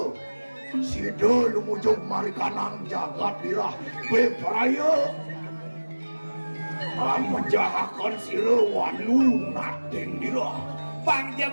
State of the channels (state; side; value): inverted; both; correlation -1.00